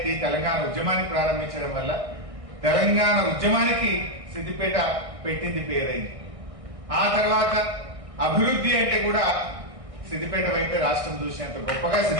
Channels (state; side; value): late; left; 1.6 ms